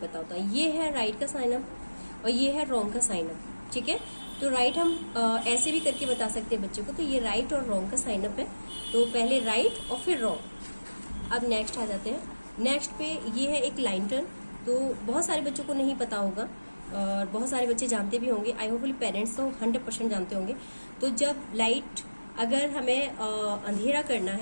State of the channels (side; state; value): both; inverted; correlation -1.00